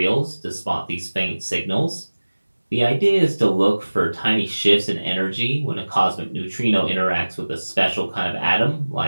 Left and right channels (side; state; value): both; inverted; correlation -1.00